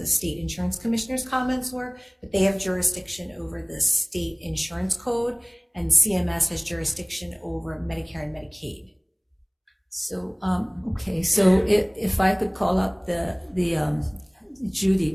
state insurance commissioner's comments were, but they have jurisdiction over the state insurance code, and CMS has jurisdiction over Medicare and Medicaid. So, okay, so if I could call up the Judy,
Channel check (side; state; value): both; identical; correlation 1.00